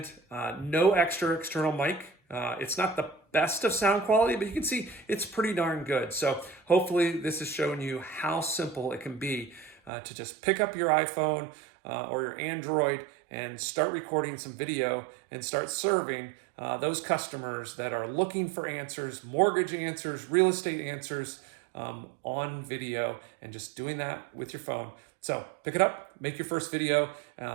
no extra external mic. It's not the best of sound quality, but you can see it's pretty darn good. So hopefully this has shown you how simple it can be to just pick up your iPhone or your Android and start recording some video and start serving those customers that are looking for answers, mortgage answers, real estate answers on video, and just doing that with your phone. So pick it up, make your first video,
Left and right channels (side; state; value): left; drops out; at 9.9 s